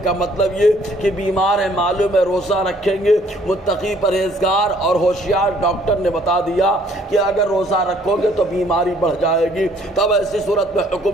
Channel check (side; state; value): both; normal; correlation 0.62